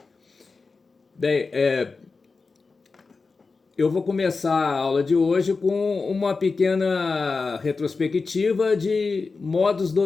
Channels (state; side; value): quieter; right; 4.3 dB